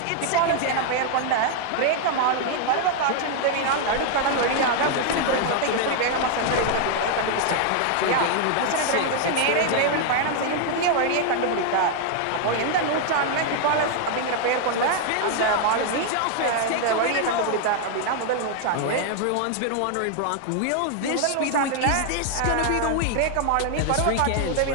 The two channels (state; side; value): different; both; correlation 0.00